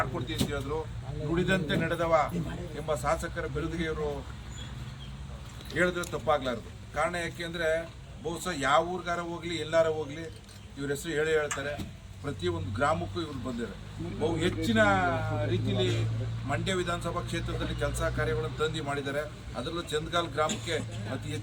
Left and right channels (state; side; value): identical; both; correlation 1.00